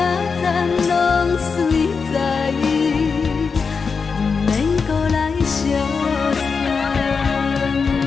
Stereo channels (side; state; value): right; quieter; 5.2 dB